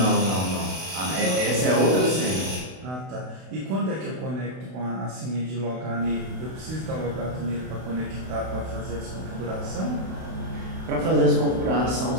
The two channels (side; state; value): left; late; 32 ms